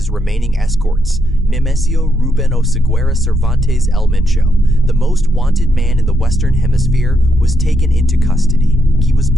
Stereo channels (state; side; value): normal; both; correlation 0.79